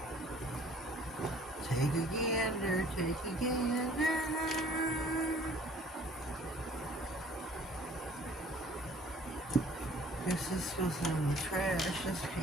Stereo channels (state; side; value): normal; both; correlation 0.54